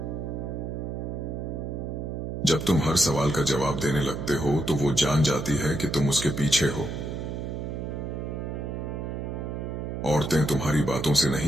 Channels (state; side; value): noise; right; hum, 5 dB below the sound